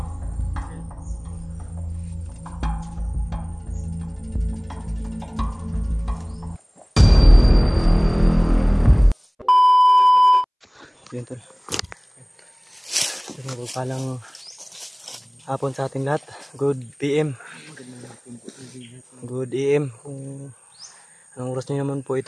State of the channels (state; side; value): identical; both; correlation 1.00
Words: Yun tol. Palang hapon sa ating lahat. Good PM. Good AM. Kung anong oras nyo naman po